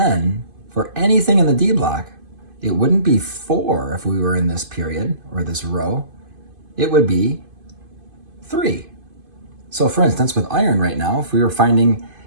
for anything in the D block, it wouldn't be 4 if we were in this period or this row, it would be 3. So for instance, with iron right now, if we were finding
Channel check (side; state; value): left; late; 2.5 ms